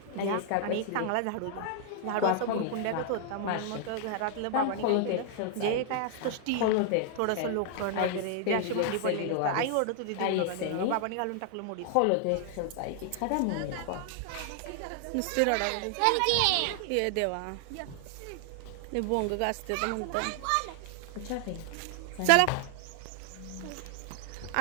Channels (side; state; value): both; different; correlation 0.00